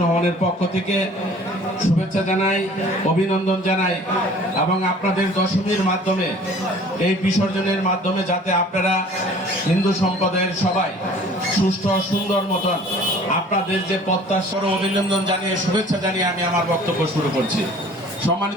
রহমানের পক্ষ থেকে শুভেচ্ছা জানাই, অভিনন্দন জানাই এবং আপনাদের দশমীর মাধ্যমে এই বিসর্জনের মাধ্যমে যাতে আপনারা হিন্দু সম্প্রদায়ের সবাই সুষ্ঠু সুন্দর মতন আপনাদের যে প্রত্যাশার অভিনন্দন জানিয়ে শুভেচ্ছা জানিয়ে আমি আমার বক্তব্য শুরু করছি।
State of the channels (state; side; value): normal; both; correlation 0.49